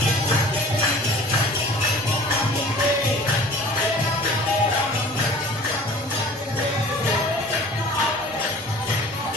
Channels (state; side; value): normal; both; correlation 0.45